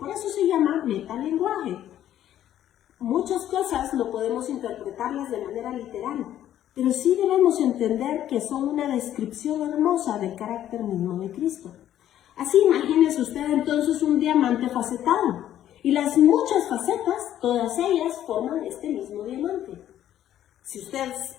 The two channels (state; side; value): quieter; right; 11.6 dB